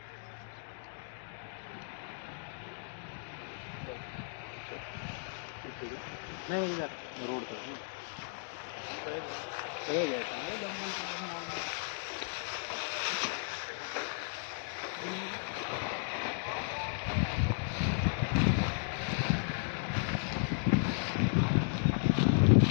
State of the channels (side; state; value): right; silent; digital silence